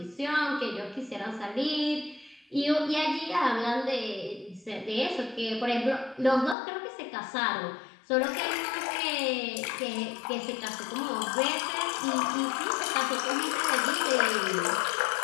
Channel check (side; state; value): right; drops out; at 6.6 s